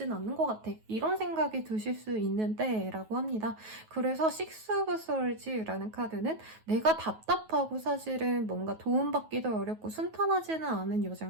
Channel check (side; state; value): left; late; 9.3 ms